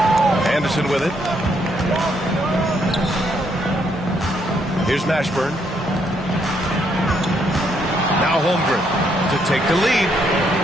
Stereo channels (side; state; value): both; normal; correlation 0.73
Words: Anderson with it. Here's Mashburn. Now Holmgren to take the lead.